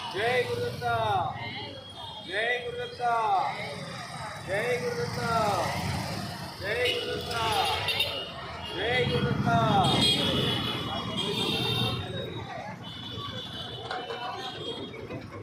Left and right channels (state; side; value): identical; both; correlation 1.00